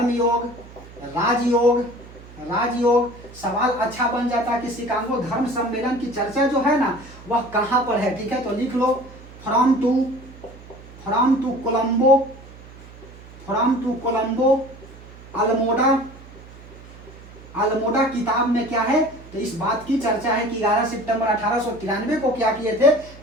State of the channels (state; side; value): noise; right; hum, 19 dB below the sound